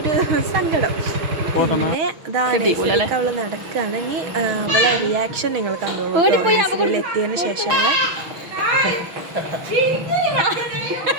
സങ്കടം. പിന്നെ അവൾ നടക്കുകയാണെങ്കിൽ അവളെ റിയാക്ഷൻ നിങ്ങൾ കണ്ടോളൂ. നഴ്സറിയിൽ എത്തിയതിന് ശേഷമുള്ള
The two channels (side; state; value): left; late; 6.4 ms